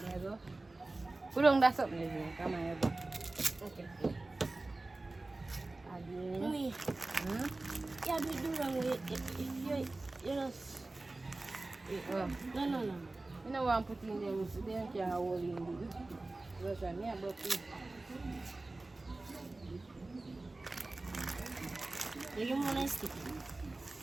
Put on that something, is it? Come on, okay. Add in. Me. Yeah, we do wrong with it. You know. No. You know what I'm putting in there, so they can't hold in it. Because I'm here, but you want to stick it?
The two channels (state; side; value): quieter; left; 3.0 dB